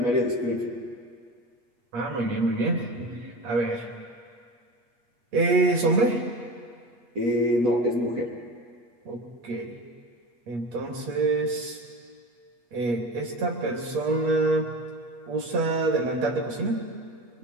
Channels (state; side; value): late; left; 8.3 ms